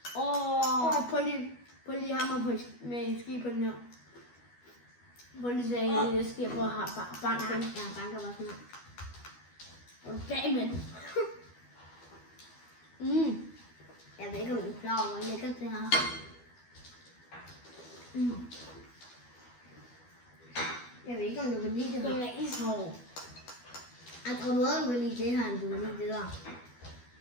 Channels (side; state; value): right; late; 12 ms